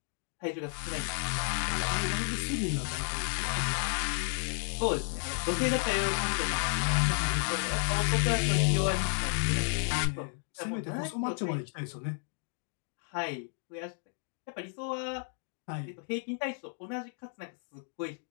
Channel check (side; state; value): right; silent; 56 dB below the other